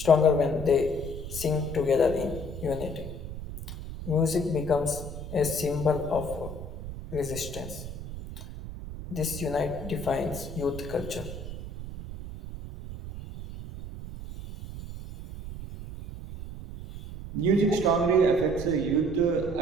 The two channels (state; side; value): noise; right; rumble, 10 dB below the sound